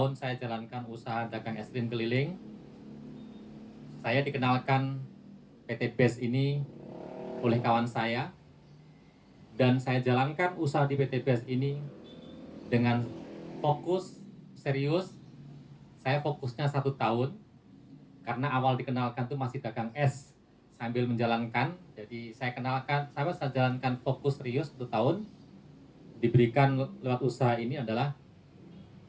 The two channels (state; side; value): identical; both; correlation 1.00